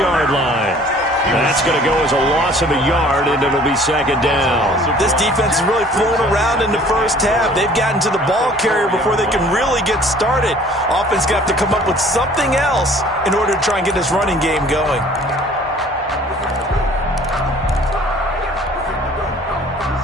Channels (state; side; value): normal; both; correlation 0.52